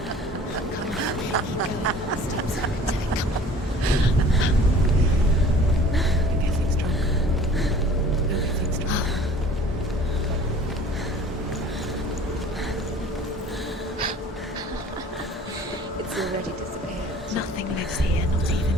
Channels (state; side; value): normal; both; correlation 0.48